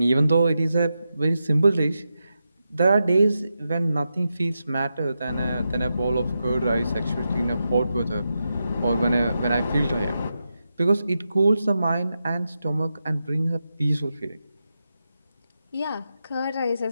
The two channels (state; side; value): inverted; both; correlation -0.88